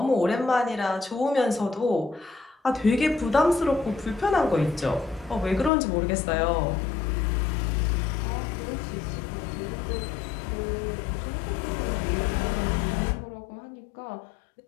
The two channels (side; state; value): right; drops out; at 5.7 s